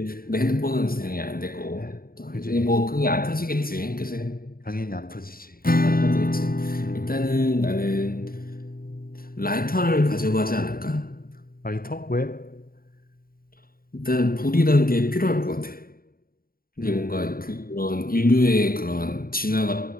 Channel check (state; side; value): late; right; 0.43 ms